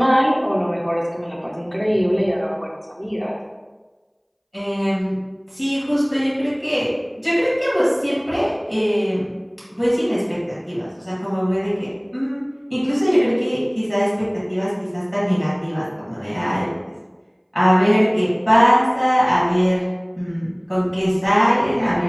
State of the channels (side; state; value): both; identical; correlation 1.00